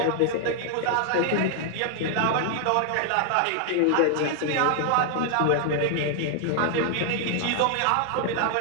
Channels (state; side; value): different; both; correlation 0.00